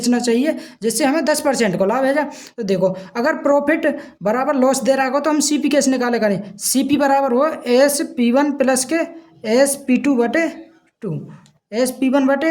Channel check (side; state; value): both; identical; correlation 1.00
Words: चाहिए, जिससे हमें 10% को लाभ है। जा तो देखो अगर प्रॉफिट बराबर लॉस दे रहा हो तो हम CP कैसे निकाले करें, CP बराबर हो SP1 प्लस के SP2/2,